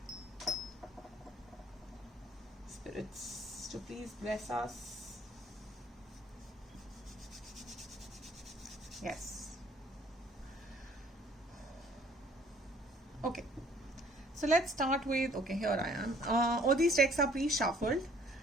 Spirits to please bless us. Yes. Okay. So let's start with, okay, here I am. All these decks are pre-shuffled.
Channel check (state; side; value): normal; both; correlation 0.57